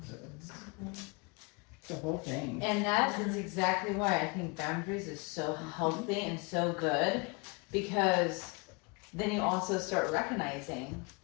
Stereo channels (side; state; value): right; quieter; 30.3 dB